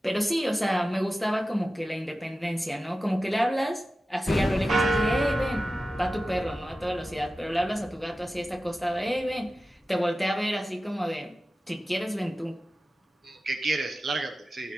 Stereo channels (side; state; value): both; normal; correlation 0.94